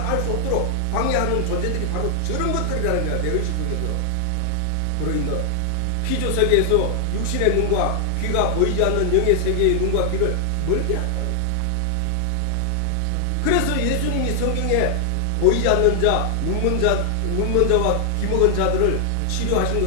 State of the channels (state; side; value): different; both; correlation 0.00